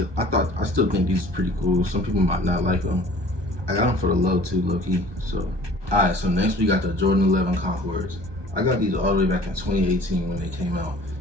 I still think these are pretty cool. Some people might not like them. I got them for the low too, low key. So, alright, so next we got the Jordan 11 Concords. I got these all the way back in 2018 when they came out.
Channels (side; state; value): left; late; 1.2 ms